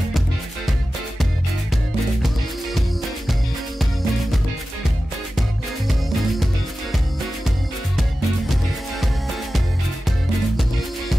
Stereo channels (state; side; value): normal; both; correlation 0.94